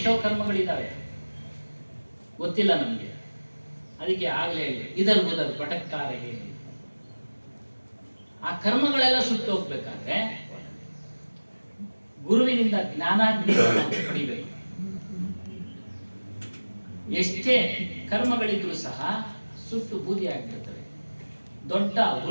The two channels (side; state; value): both; inverted; correlation -1.00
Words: ಕರ್ಮಗಳಿದ್ದಾವೆ, ಗೊತ್ತಿಲ್ಲ ನಮಗೆ. ಅದಕ್ಕೆ ಆಗಲೇ ಹೇಳಿ, ಇದರ್ ಉದರ್ ಭಟಕ್ತಾರೆ ಹೇಳಿ. ಆ ಕರ್ಮಗಳೆಲ್ಲ ಸುಟ್ಟು ಹೋಗ್ಬೇಕಾದ್ರೆ ಗುರುವಿನಿಂದ ಜ್ಞಾನಾಗ್ನಿಯನ್ನು ಪಡಿಬೇಕು. ಎಷ್ಟೇ ಕರ್ಮಗಳಿದ್ರೂ ಸಹ ಸುಟ್ಟು ಬೂದಿ ಆಗಿರ್ತವೆ. ದೊಡ್ಡ